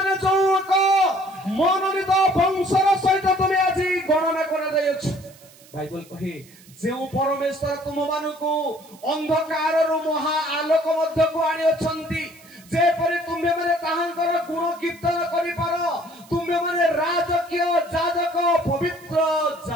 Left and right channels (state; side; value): noise; right; hiss, 25 dB below the sound